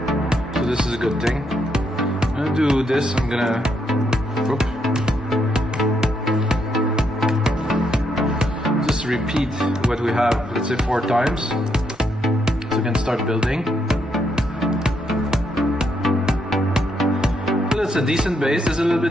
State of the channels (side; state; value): both; normal; correlation 0.77